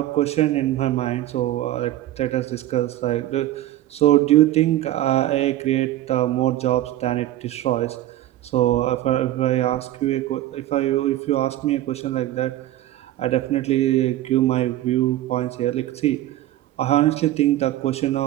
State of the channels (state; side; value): quieter; left; 14.3 dB